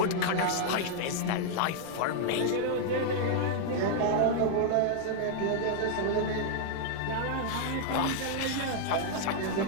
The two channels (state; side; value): different; both; correlation -0.01